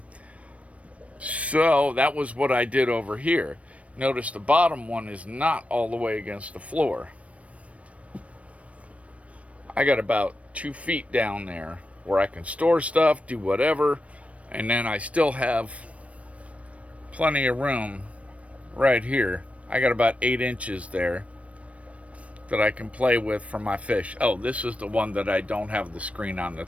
So that was what I did over here. Notice the bottom one is not all the way against the floor. I got about 2 feet down there where I can store stuff, do whatever, and then I still have plenty of room right here. I got about 8 inches there that I can play with for my fish. Oh, this is the one that I don't have the screen on the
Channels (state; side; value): late; left; 0.064 ms